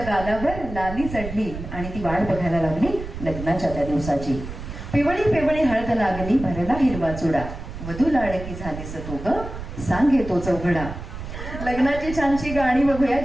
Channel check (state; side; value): noise; right; rumble, 9 dB below the sound